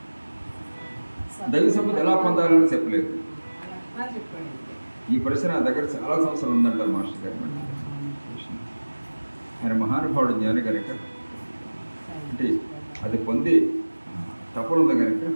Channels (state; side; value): inverted; both; correlation -1.00